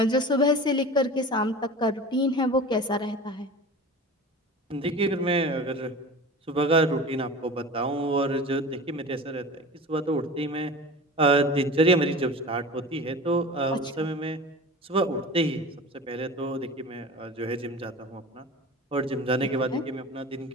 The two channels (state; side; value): normal; both; correlation 0.35